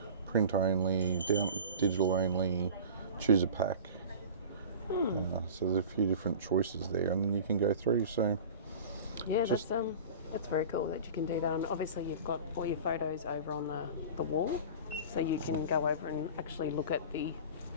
print only, digital only, choose a pack. So there's a few different choices there, and then you can go through. So yeah, that's very cool that you can do that. And obviously you've got all your photos over on the wall, so you can go over and actually look at the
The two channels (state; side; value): inverted; both; correlation -0.37